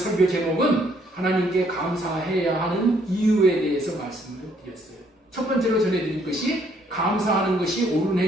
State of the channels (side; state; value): both; normal; correlation 0.67